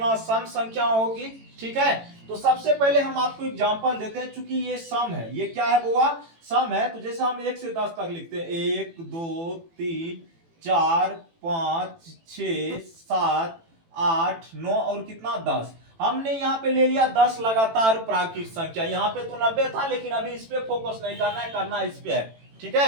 सम संख्या होगी। ठीक है, तो सबसे पहले हम आपको एग्जांपल देते हैं। चूंकि ये सम है, ये क्या है बुआ, सम है। तो जैसे हम 1 से 10 तक लिखते हैं, 1 2 3 4 5 6 7 8 9 और कितना 10। हमने यहाँ पे ले लिया 10 लगातार प्राकृत संख्या। यहाँ पे तो 90 था, लेकिन अभी इस पे फोकस नहीं करना है, करना इस पे है। ठीक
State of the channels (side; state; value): left; late; 18 ms